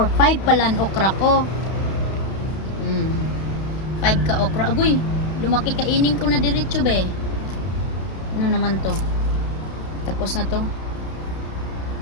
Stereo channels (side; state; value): right; late; 31 ms